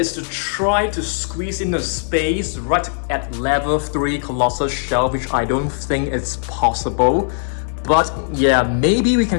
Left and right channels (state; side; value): silent; right; digital silence